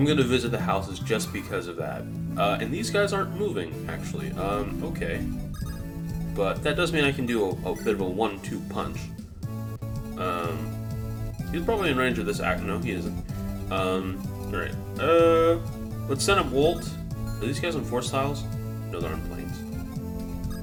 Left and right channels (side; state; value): both; identical; correlation 1.00